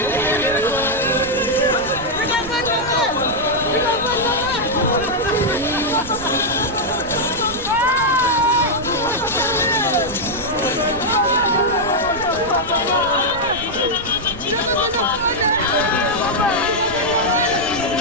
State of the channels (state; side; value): noise; right; rumble, 14 dB below the sound